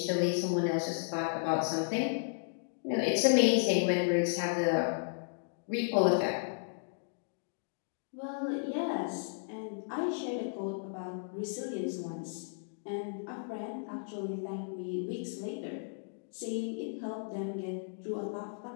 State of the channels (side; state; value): right; silent; digital silence